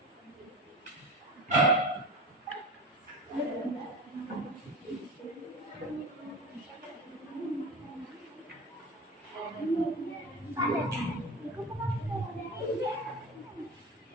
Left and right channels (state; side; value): normal; both; correlation 0.30